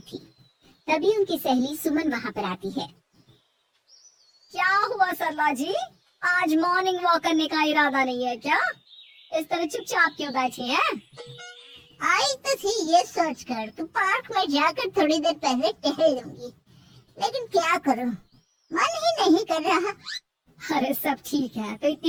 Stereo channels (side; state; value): both; identical; correlation 1.00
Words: थी। तभी उनकी सहेली सुमन वहाँ पर आती है। क्या हुआ सरला जी, आज मॉर्निंग वॉक करने का इरादा नहीं है क्या? इस तरह चुपचाप क्यों बैठी हैं? आई तो थी ये सोचकर कि पार्क में जाकर थोड़ी देर पहले टहल लूंगी, लेकिन क्या करूं, मन ही नहीं कर रहा। अरे सब ठीक है, तो इतनी